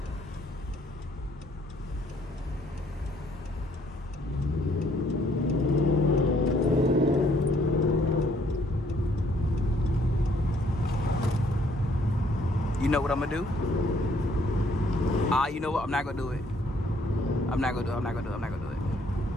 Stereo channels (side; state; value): both; normal; correlation 0.65